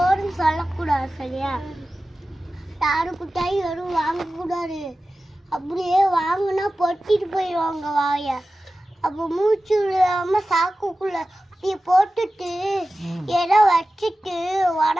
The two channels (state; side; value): normal; both; correlation 0.95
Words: சொல்லக்கூடாது, சரியா? யாருக்கிட்டாயும் யாரும் வாங்கக்கூடாது. அப்படியே வாங்கினா பொட்டிட்டு போயிடுவாங்க வாய. அப்போ மூச்சு விடாம சாக்குக்குள்ள அப்படியே போட்டுட்டு ஏதோ வச்சுட்டு